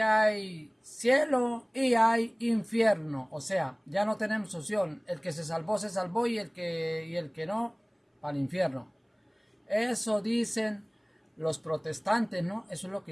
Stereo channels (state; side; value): identical; both; correlation 1.00